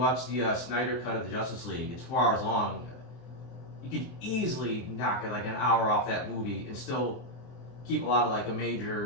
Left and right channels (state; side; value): late; right; 24 ms